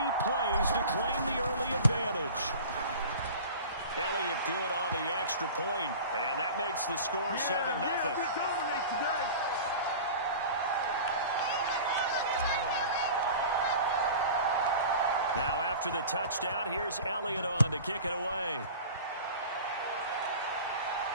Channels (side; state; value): both; inverted; correlation -0.38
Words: plays to claim the early advantage. Elliott good on the extra point, and that makes the score 7-0. Now after the touchdown, here's Elliott on to kick it away.